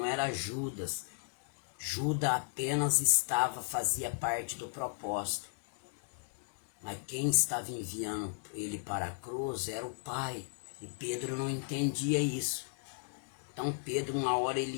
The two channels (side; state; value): right; silent; digital silence